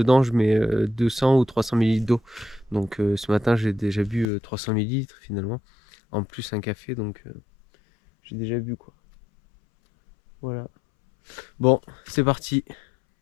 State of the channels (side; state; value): right; drops out; at 4.2 s